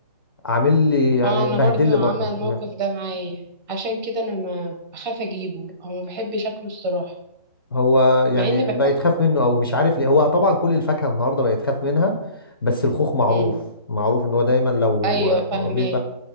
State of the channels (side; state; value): both; inverted; correlation -0.47